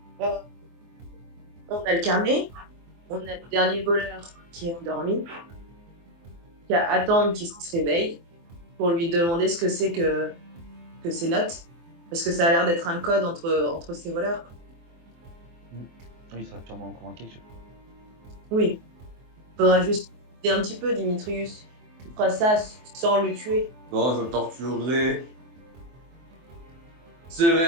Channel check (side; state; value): left; late; 24 ms